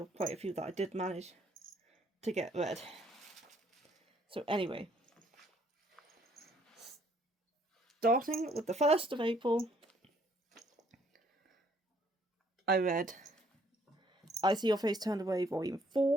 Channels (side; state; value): both; normal; correlation 0.65